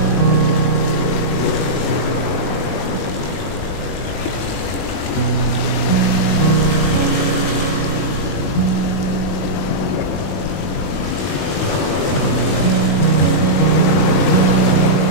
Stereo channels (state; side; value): late; right; 21 ms